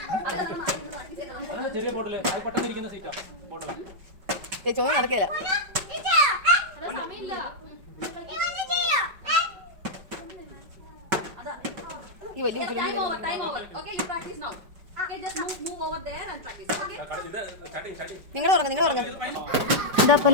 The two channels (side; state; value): left; late; 5.3 ms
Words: ചെറിയ ബോട്ടില് അത് പെട്ടെന്ന് ഇരിക്കുന്ന സീറ്റാ ബോട്ടിലാ. ചോദ്യം നടക്കില്ല. ഈ വലിയ നിങ്ങൾ ഉറങ്ങും. ഇതപ്പോൾ